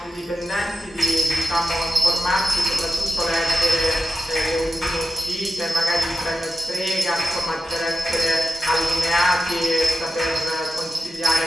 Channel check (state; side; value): normal; both; correlation 0.92